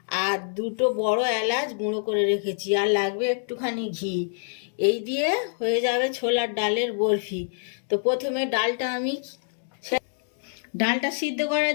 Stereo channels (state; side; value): silent; right; digital silence